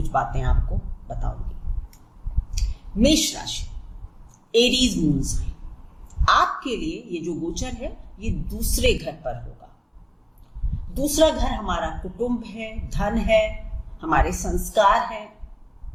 बातें आपको बताऊंगी। मेष राशि, एरीज मून साइन, आपके लिए ये जो गोचर है ये दूसरे घर पर होगा। दूसरा घर हमारा कुटुंब है, धन है, हमारे संस्कार हैं।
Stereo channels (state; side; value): identical; both; correlation 1.00